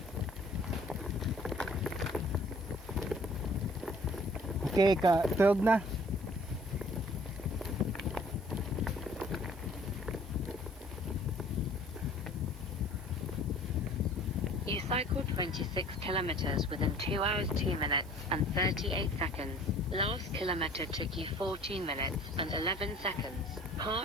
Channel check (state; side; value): noise; right; hiss, 25 dB below the sound